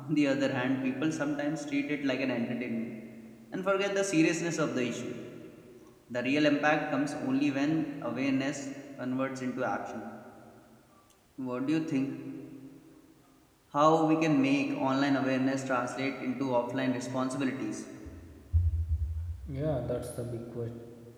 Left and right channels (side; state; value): both; identical; correlation 1.00